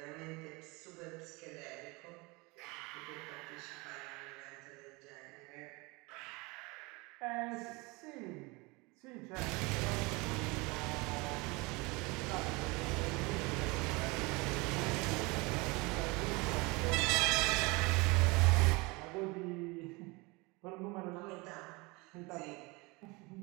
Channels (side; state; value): left; quieter; 25.7 dB